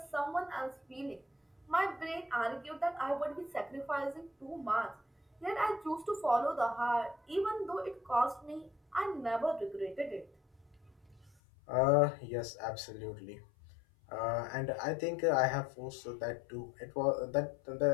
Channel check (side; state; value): right; drops out; at 11.3 s